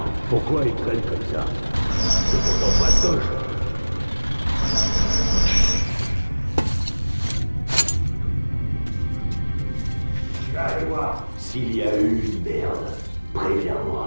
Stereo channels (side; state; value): both; inverted; correlation -1.00